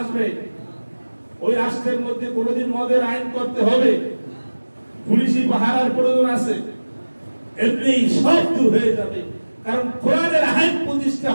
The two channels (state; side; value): inverted; both; correlation -1.00